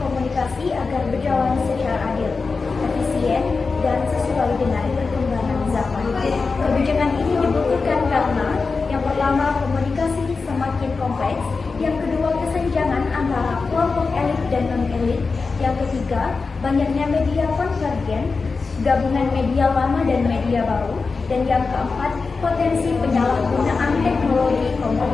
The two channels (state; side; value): quieter; right; 4.4 dB